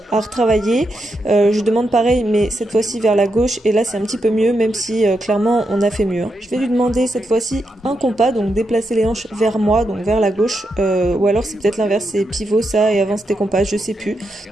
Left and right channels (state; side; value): normal; both; correlation 0.84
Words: à retravailler. Je demande pareil mais cette fois-ci vers la gauche et là c'est un petit peu mieux même si clairement on a fait mieux. Je vais lui demander cette fois-ci un compas, donc déplacer les hanches vers moi, donc vers la gauche, ou alors c'est peut-être l'inverse, c'est pivot ça et avant c'était compas, je sais plus.